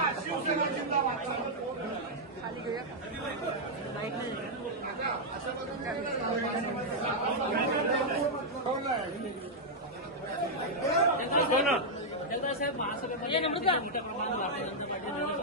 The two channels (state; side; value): normal; both; correlation -0.04